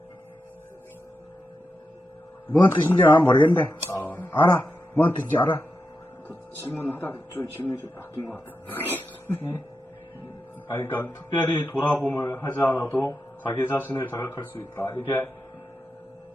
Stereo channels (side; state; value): both; normal; correlation 0.88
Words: 뭔 뜻인지 난 모르겠는데. 아, 알아? 뭔 뜻인지 알아? 질문하다가 좀 질문이 좀 바뀐 것 같아. 아니, 그러니까 특별히 돌아봄을 하지 않아도 자기 자신을 자각할 수 있다. 이게